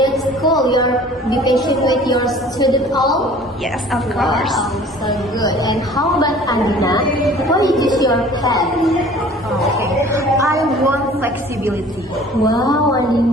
cool. You're be patient with your student all. Yes, of course. Wow, so good. And how about Andina? Why you choose your path? Okay. I want flexibility. Wow,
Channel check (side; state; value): both; normal; correlation 0.48